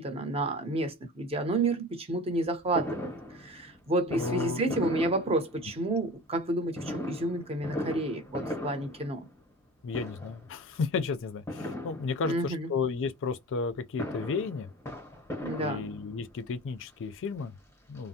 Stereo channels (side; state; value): both; normal; correlation 0.36